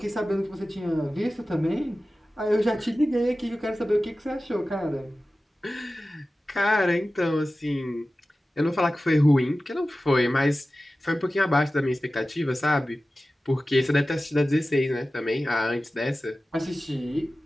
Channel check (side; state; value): both; normal; correlation 0.95